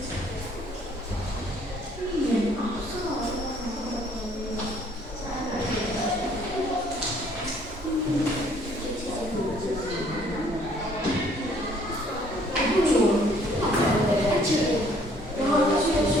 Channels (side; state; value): both; normal; correlation 0.61